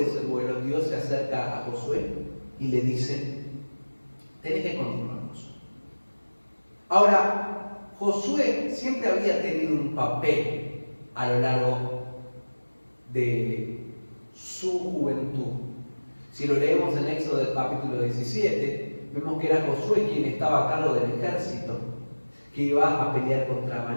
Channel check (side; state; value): both; inverted; correlation -1.00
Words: ese duelo Dios se acerca a Josué y le dice: tenés que continuarnos. Ahora, Josué siempre había tenido un papel a lo largo de su juventud. Si lo leemos en Éxodo del capítulo 17, vemos que era Josué quien estaba a cargo del ejército que iba a pelear contra